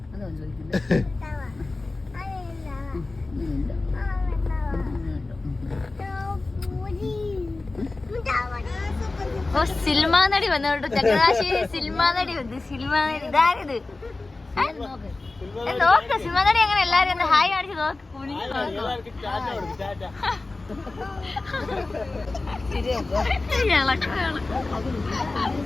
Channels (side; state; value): right; quieter; 3.3 dB